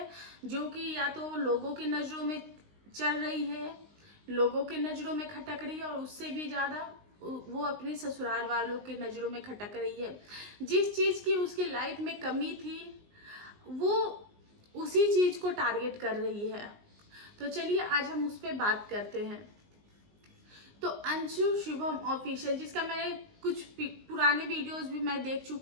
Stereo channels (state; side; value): late; left; 19 ms